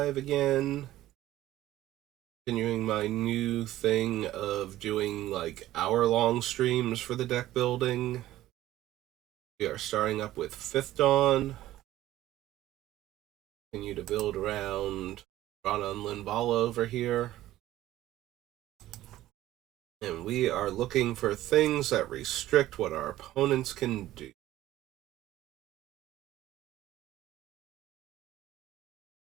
again. Continuing my new thing of doing like hour-long streams for the deck building. We are starting up with 5th Dawn. Continue to build around Drana and Linvala over here. And we are looking for things that restrict what our opponents can do.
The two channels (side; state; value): left; quieter; 14.7 dB